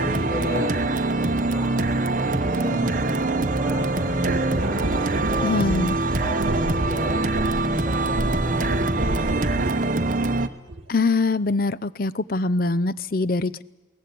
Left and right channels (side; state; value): both; normal; correlation 0.46